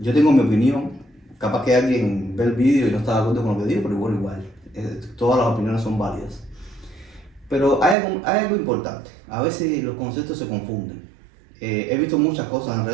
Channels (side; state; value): left; drops out; at 8.0 s